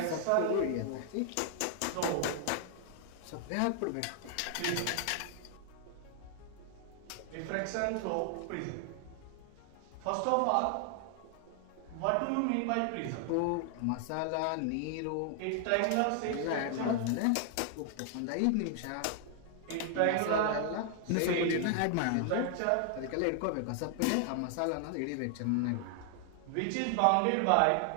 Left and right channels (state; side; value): different; both; correlation 0.00